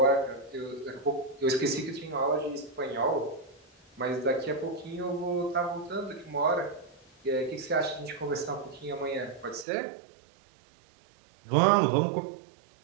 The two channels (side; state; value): left; drops out; at 9.7 s